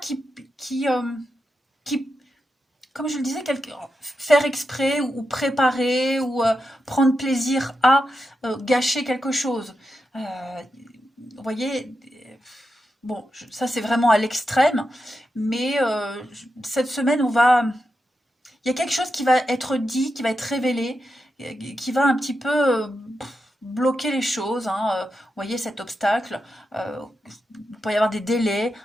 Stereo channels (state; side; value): normal; both; correlation 0.88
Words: comme je le disais, faire exprès ou préparer ou prendre plaisir à gâcher quelque chose. Vous voyez, bon, ça c'est vraiment à l'extrême, mais cette semaine, il y a quelque chose qui va être dit, qui va être révélé, qui va un petit peu bloquer les choses. Hein, vous voyez cet obstacle, il peut y avoir des délais,